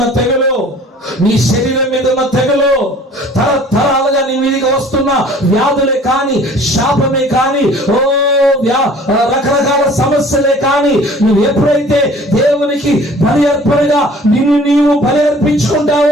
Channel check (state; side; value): normal; both; correlation 0.50